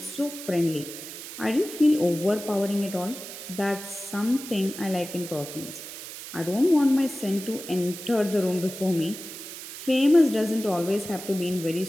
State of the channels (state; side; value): noise; right; hiss, 11 dB below the sound